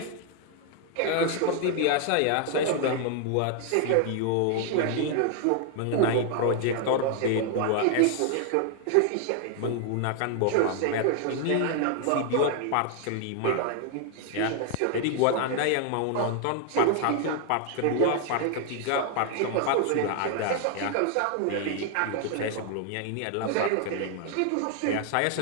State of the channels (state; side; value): different; both; correlation 0.00